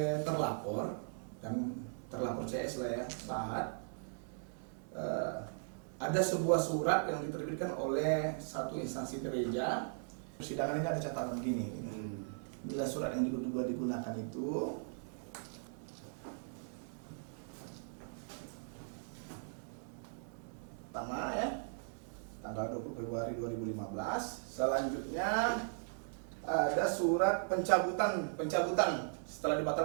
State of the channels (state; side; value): silent; left; digital silence